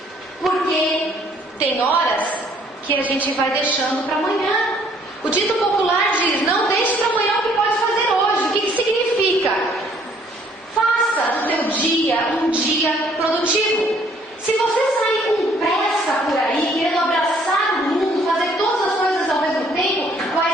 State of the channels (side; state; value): both; normal; correlation 0.62